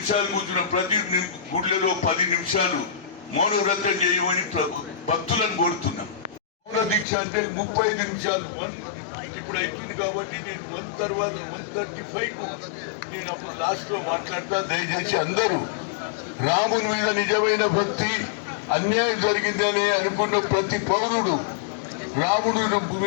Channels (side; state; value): right; drops out; at 7.1 s